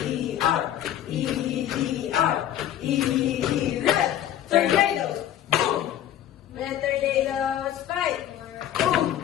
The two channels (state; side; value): quieter; right; 11.4 dB